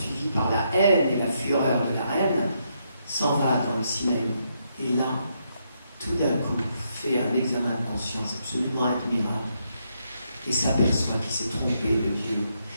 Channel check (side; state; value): both; inverted; correlation -0.78